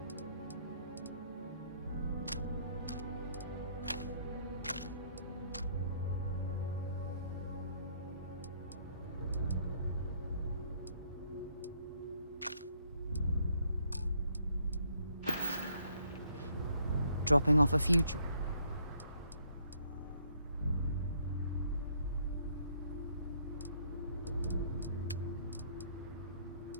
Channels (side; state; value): both; inverted; correlation -0.67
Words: dropping off a few...